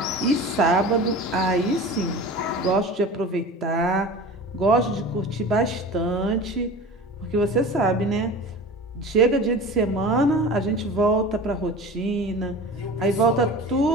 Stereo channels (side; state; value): both; normal; correlation 0.36